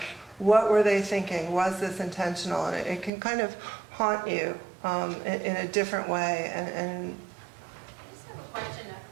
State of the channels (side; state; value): left; drops out; at 3.1 s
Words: what were they thinking? Was this intentional? And it can kind of haunt you in a different way. And I just have a question